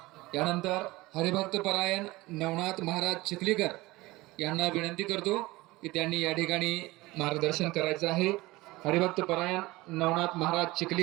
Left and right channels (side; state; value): left; quieter; 20.2 dB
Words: यानंतर हरिभक्त परायण नवनाथ महाराज चिखलीकर यांना विनंती करतो की त्यांनी या ठिकाणी मार्गदर्शन करायचं आहे. हरिभक्त परायण नवनाथ महाराज